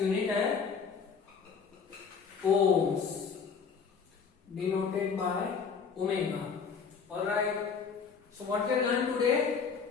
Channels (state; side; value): quieter; right; 5.8 dB